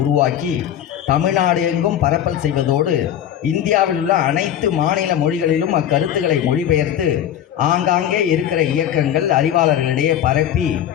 உருவாக்கி தமிழ்நாடு எங்கும் பரப்பல் செய்வதோடு இந்தியாவில் உள்ள அனைத்து மாநில மொழிகளிலும் அக்கருத்துக்களை மொழிபெயர்த்து ஆங்காங்கே இருக்கிற இயக்கங்கள், அறிவாளர்களிடையே பரப்பி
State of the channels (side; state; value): right; quieter; 10.5 dB